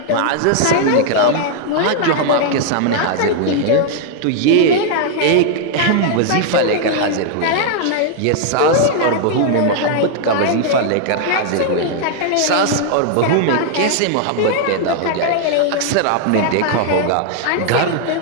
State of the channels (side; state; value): both; different; correlation 0.00